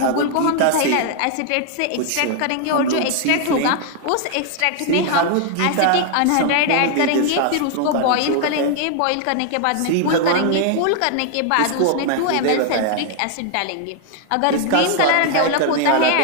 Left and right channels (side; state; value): both; different; correlation 0.00